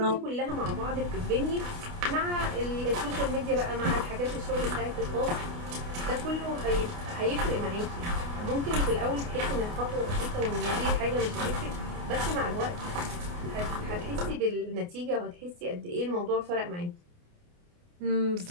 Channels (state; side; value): late; left; 28 ms